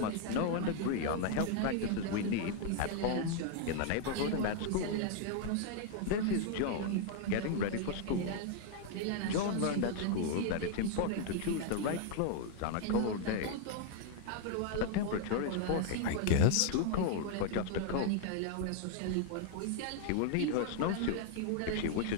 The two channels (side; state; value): both; different; correlation 0.00